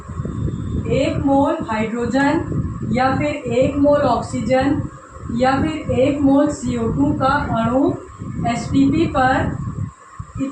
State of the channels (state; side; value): identical; both; correlation 1.00